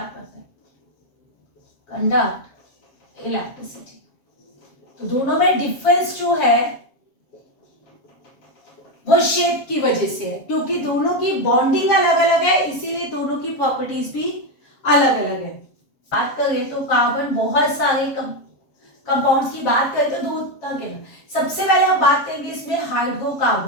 करता है, कंडक्ट इलेक्ट्रिसिटी। तो दोनों में डिफरेंस जो है वो शेप की वजह से है, क्योंकि दोनों की बॉन्डिंग अलग अलग है, इसीलिए दोनों की प्रॉपर्टीज भी अलग अलग है। बात करें तो कार्बन बहुत सारे कंपाउंड्स की बात करें तो 2 तरह के, सबसे पहले हम बात करेंगे इसमें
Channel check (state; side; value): late; right; 7.4 ms